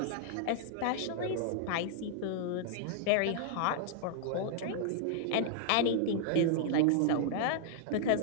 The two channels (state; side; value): different; both; correlation -0.01